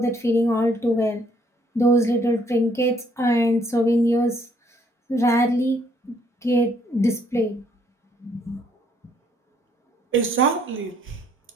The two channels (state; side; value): normal; both; correlation 0.66